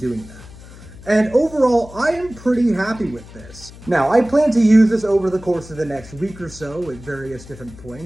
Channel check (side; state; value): left; noise; hum, 18 dB below the sound